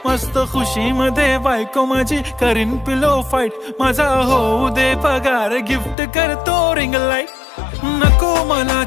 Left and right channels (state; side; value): drops out; right; at 6.0 s